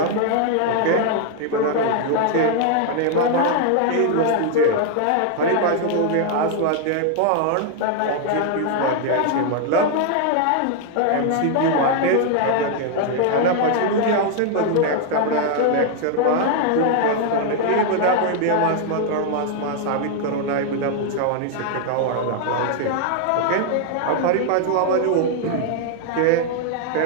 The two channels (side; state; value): both; different; correlation 0.00